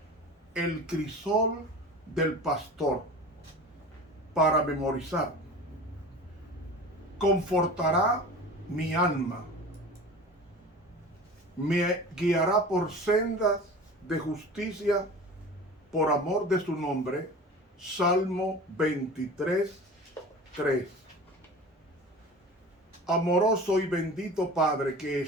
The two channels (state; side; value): normal; both; correlation 0.37